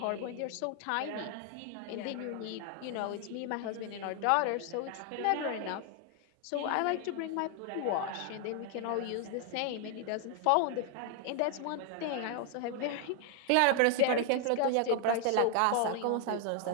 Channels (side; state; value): both; different; correlation 0.00